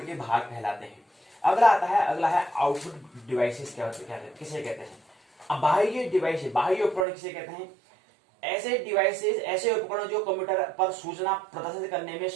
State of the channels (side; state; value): left; drops out; at 7.1 s